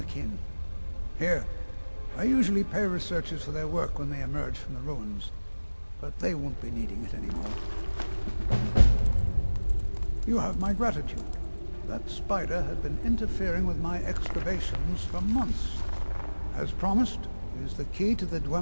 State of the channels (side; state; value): both; inverted; correlation -1.00